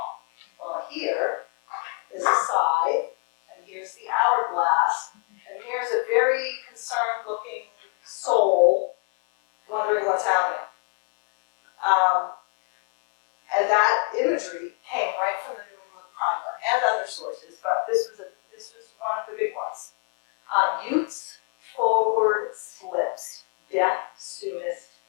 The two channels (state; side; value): quieter; right; 38.1 dB